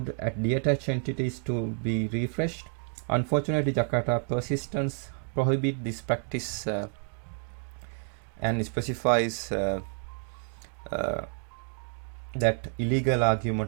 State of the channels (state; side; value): quieter; left; 37.9 dB